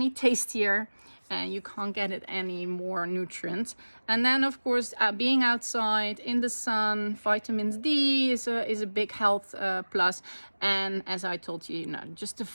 tastier. And you can't get it any more nutrient. And then, of course, being outside in the sun, vitamins D is a big health plus. And as I told you, just the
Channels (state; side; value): inverted; both; correlation -1.00